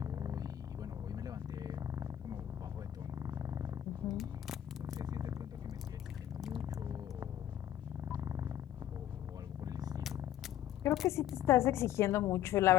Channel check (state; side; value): quieter; right; 11.7 dB